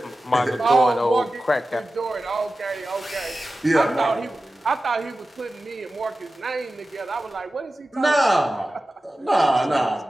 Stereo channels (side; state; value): both; normal; correlation 0.94